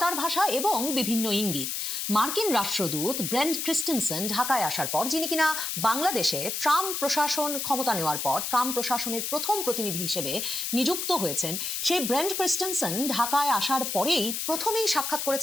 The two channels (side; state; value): left; noise; hiss, 3 dB below the sound